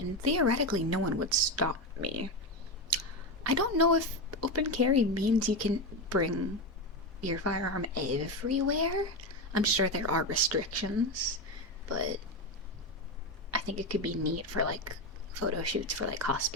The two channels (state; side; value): normal; both; correlation 0.14